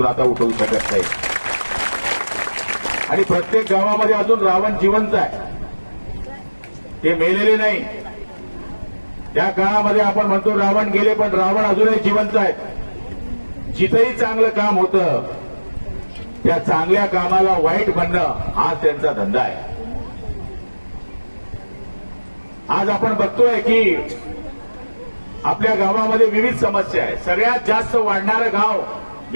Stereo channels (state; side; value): inverted; both; correlation -1.00